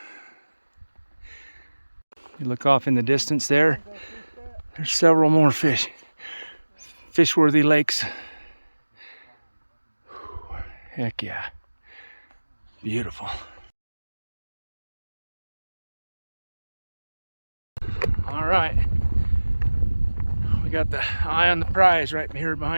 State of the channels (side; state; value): both; inverted; correlation -1.00